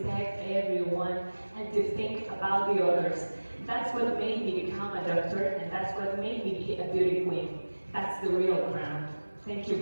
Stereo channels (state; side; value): inverted; both; correlation -1.00